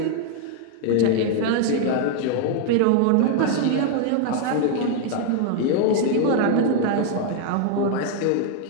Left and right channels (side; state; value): both; different; correlation 0.00